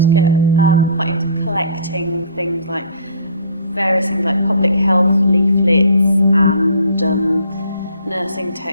to get quite into collecting things like various things like public health leaflets and nursing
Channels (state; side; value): inverted; both; correlation -0.51